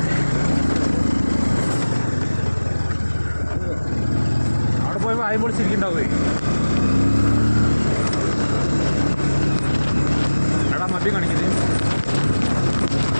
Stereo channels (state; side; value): inverted; both; correlation -1.00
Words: അവിടെ പോയി വായും പൊളിച്ചിരിക്കണ്ടാവേ. എടാ മദ്യം കാണിക്കുന്നത്